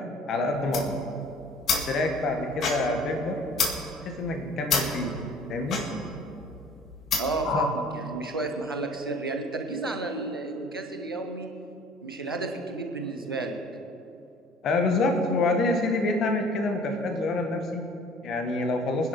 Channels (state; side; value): normal; both; correlation 0.50